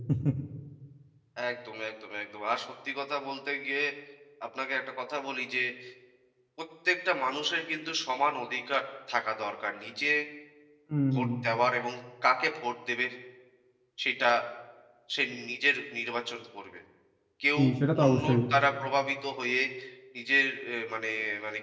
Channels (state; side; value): identical; both; correlation 1.00